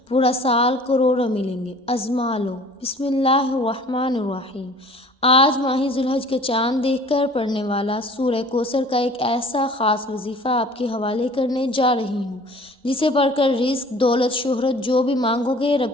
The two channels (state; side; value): normal; both; correlation 0.48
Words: پورا سال کروڑوں ملیں گے۔ ازما لو۔ بسم اللہ الرحمن الرحیم۔ آج ماہ ذوالحج کا چاند دیکھ کر پڑھنے والا سورہ کوثر کا ایک ایسا خاص وظیفہ آپ کے حوالے کرنے جا رہی ہوں جسے پڑھ کر رزق، دولت، شہرت جو بھی مانگو گے